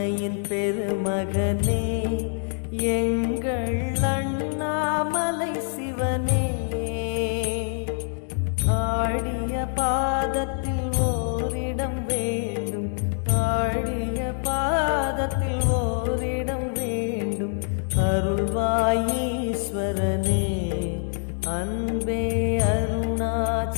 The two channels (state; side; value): silent; right; digital silence